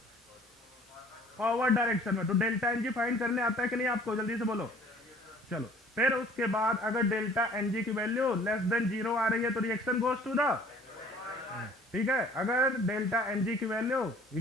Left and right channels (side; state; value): both; normal; correlation 0.53